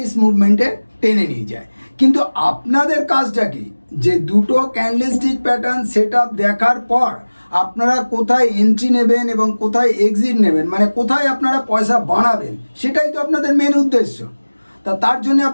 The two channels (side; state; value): both; inverted; correlation -1.00